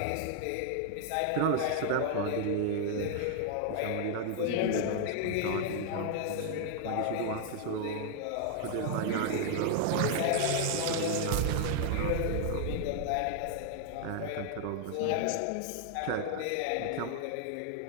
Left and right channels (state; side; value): different; both; correlation 0.00